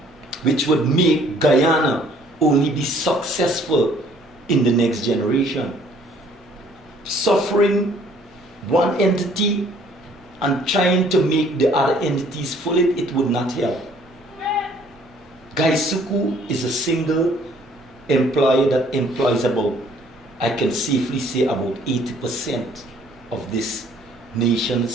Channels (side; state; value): both; normal; correlation 0.59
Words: which would make Guyana only be successful in the next generation. Suffering one entity and trying to make the other entities full, it would not help. Gaisuku is a single employer that employs about, I can safely say, about 80% of this